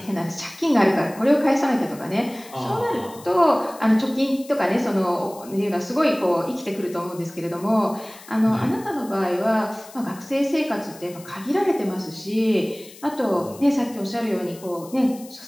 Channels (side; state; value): left; noise; hiss, 20 dB below the sound